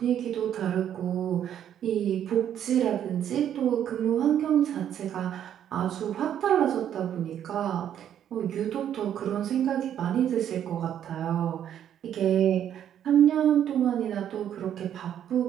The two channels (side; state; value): left; quieter; 10.0 dB